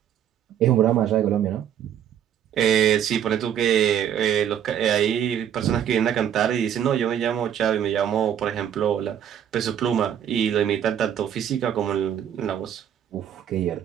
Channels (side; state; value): left; quieter; 9.7 dB